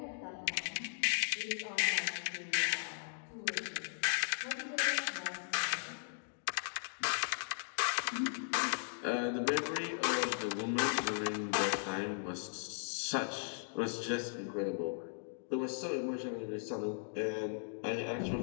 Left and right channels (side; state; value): right; silent; digital silence